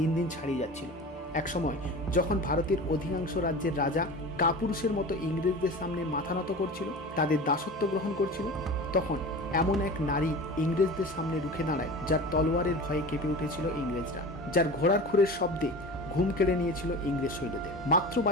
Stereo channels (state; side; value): normal; both; correlation 0.34